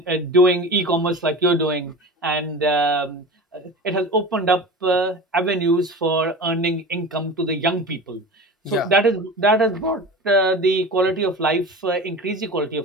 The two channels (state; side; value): normal; both; correlation 0.33